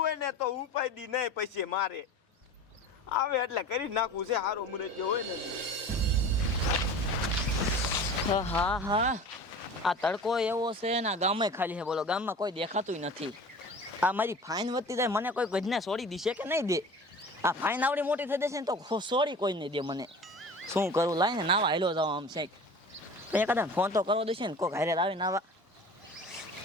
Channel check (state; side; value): normal; both; correlation 0.39